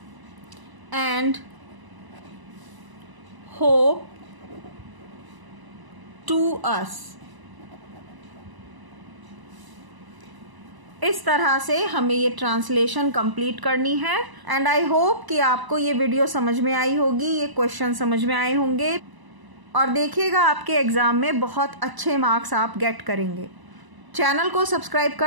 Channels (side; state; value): left; late; 1.0 ms